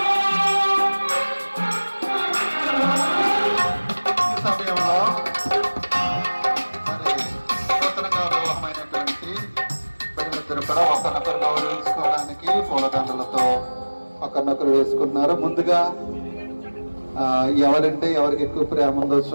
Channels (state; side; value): inverted; both; correlation -1.00